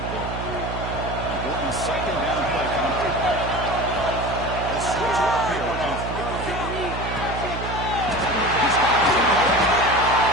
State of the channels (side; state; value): right; noise; hum, 6 dB below the sound